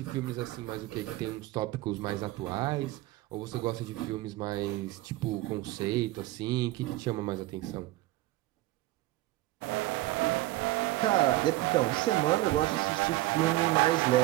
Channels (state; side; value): quieter; left; 17.7 dB